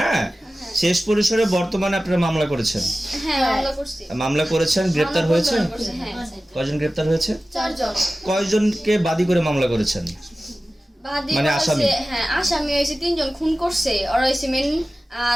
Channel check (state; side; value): normal; both; correlation 0.96